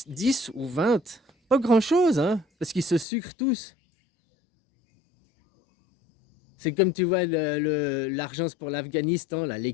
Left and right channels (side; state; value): right; drops out; at 3.1 s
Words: ou 20. Pas grand-chose, hein, parce qu'ils se sucrent tous. C'est comme tu vois l'argent pour l'Afghanistan, là, les